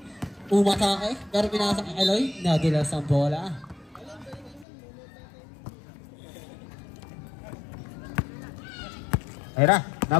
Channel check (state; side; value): drops out; right; at 4.7 s